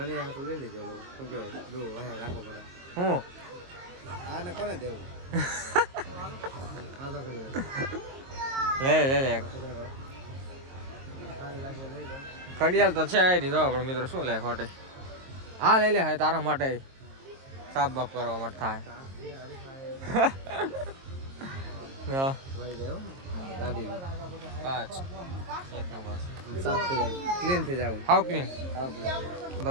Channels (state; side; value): late; left; 22 ms